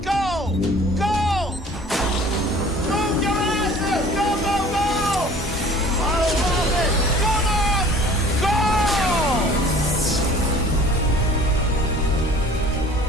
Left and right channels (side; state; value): both; normal; correlation 0.48